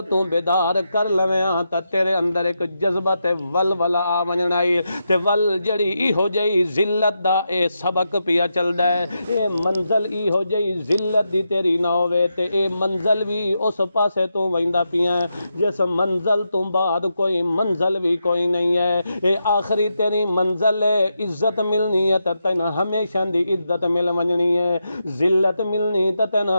تو بیدار کر لویاں تا تیرے اندر ایک جذبہ تے ولولا آ ونجنائی تے جڑی ای ہو جائی ذلت دا اے سبق پیا چلدا ہے، اے منزل ای ہو جائی ذلت دی تیری نہ ہوے تے اے منزل بھی اس پاسے تو ویندا پیا جس منزل تو بعد کوئی منزل بھی کوئی نہیں ہے، اے آخری تیری منزل ہے، عزت ملنی ہے تے تین ہمیشہ دی عزت مل ونجنی ہے، ذلت ملنی تے تین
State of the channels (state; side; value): inverted; both; correlation -0.85